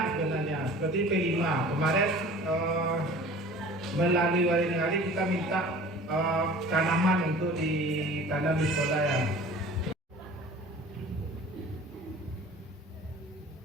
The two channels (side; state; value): both; normal; correlation 0.44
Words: sebenarnya. Seperti P5 kemarin melalui wali negara kita minta tanaman untuk ditanam di sekolah ya.